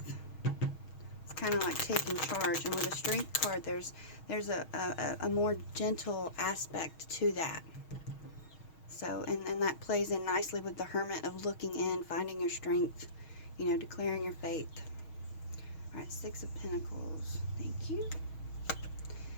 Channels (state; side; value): late; right; 6.3 ms